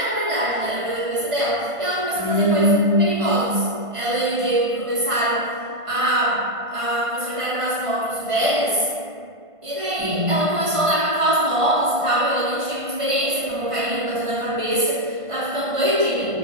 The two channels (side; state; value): left; late; 1.5 ms